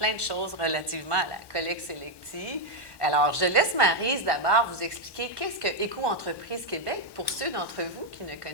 de choses relativement à la collecte sélective. Alors, je laisse Maryse d'abord vous expliquer qu'est-ce que Éco-entreprise Québec pour ceux d'entre vous qui ne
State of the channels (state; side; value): late; right; 1.1 ms